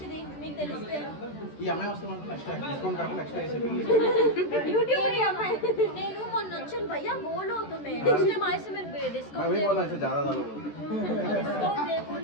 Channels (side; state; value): right; late; 13 ms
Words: మీకు తెలిస్తే. యూట్యూబ్ అమ్మాయి నేను మొన్న వచ్చాను భయ్యా, బోల్ అవుతుంది నెక్స్ట్ టైం ఆయిస్ మీరు డిస్కౌంట్